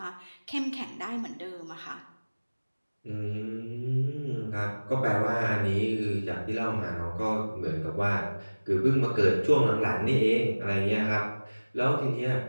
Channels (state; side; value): inverted; both; correlation -1.00